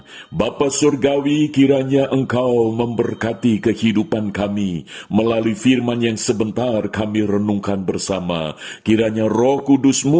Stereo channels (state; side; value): identical; both; correlation 1.00